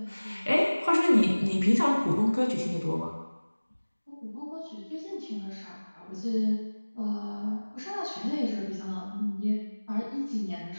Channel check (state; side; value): inverted; both; correlation -1.00